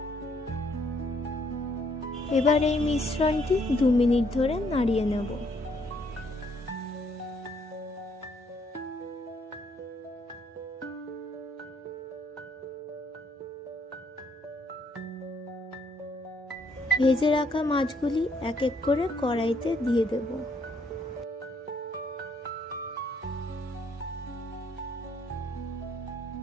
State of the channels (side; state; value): both; normal; correlation 0.68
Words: এবার এই মিশ্রণটি 2 মিনিট ধরে নাড়িয়ে নেব। ভেজে রাখা মাছগুলি এক এক করে কড়াইতে দিয়ে দেব।